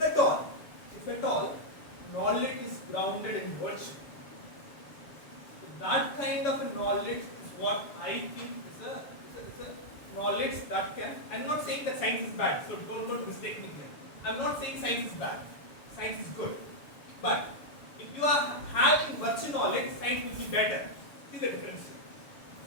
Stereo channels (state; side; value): late; right; 7.1 ms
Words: all, knowledge is grounded in virtue. So that kind of a knowledge is what I think is a knowledge that can. I'm not saying that science is bad, so don't mistake me here. I'm not saying science is bad. Science is good. But if you are having virtue knowledge, science will be better. See the difference here.